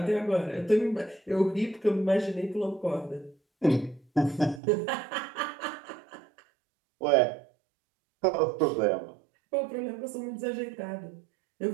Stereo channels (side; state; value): left; drops out; at 4.6 s